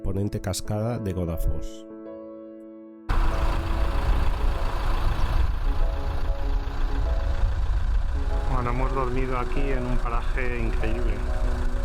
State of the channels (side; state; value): both; identical; correlation 1.00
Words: cascada de Godafoss. Bueno, hemos dormido aquí en un paraje increíble.